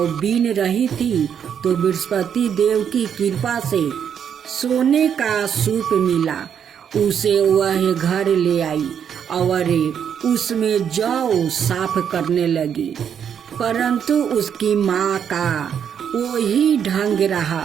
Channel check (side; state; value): left; quieter; 8.2 dB